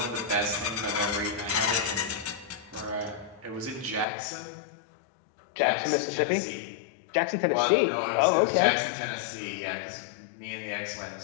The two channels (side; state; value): right; drops out; at 4.0 s